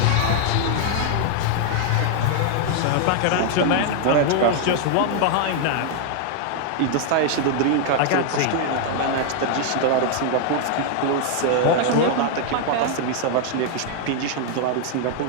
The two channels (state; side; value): different; both; correlation 0.00